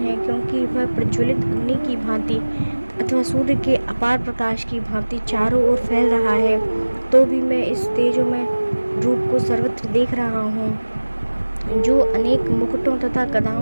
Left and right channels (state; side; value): inverted; both; correlation -1.00